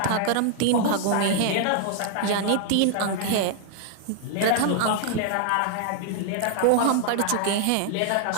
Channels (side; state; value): both; different; correlation 0.00